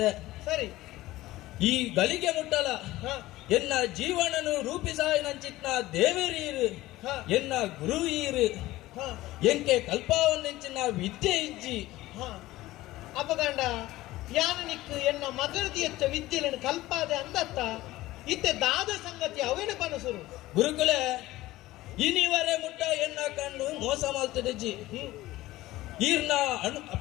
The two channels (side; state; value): right; quieter; 17.2 dB